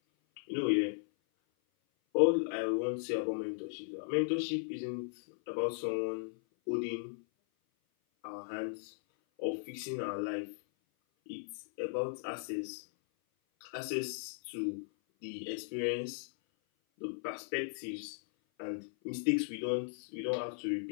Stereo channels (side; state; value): right; silent; 53 dB below the other